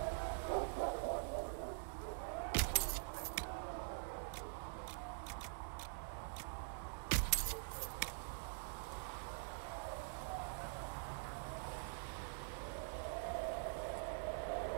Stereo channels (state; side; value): silent; left; digital silence